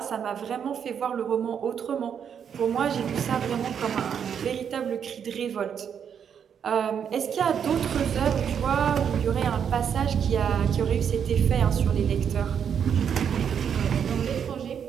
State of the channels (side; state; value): left; quieter; 7.8 dB